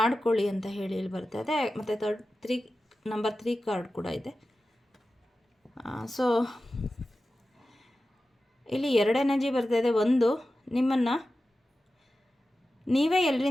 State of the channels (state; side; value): normal; both; correlation 0.94